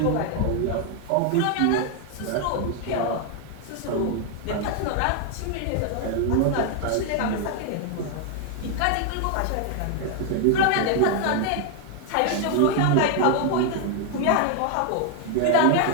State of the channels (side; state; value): both; different; correlation 0.00